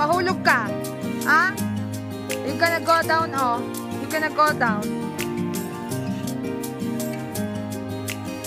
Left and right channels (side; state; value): both; identical; correlation 1.00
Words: ka. Ah? You're gonna go down, oh. You're gonna go down.